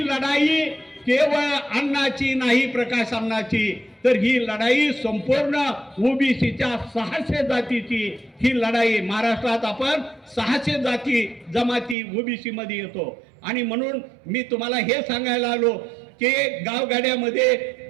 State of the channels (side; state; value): left; drops out; at 12.0 s